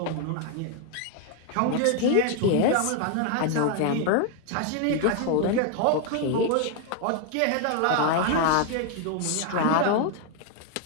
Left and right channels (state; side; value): different; both; correlation 0.00